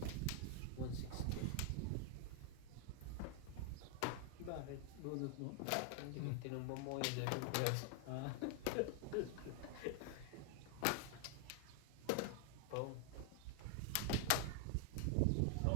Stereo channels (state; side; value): different; both; correlation 0.00